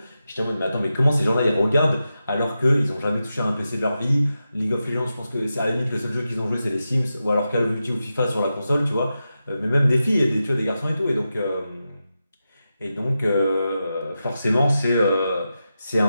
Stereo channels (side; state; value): both; inverted; correlation -0.90